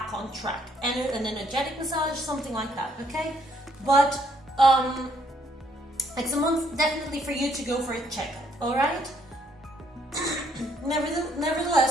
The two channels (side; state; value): both; normal; correlation 0.69